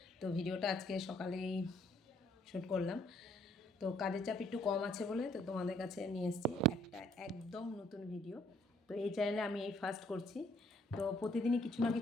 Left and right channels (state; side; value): normal; both; correlation 0.64